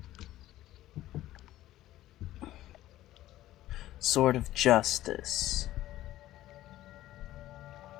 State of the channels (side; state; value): right; quieter; 14.7 dB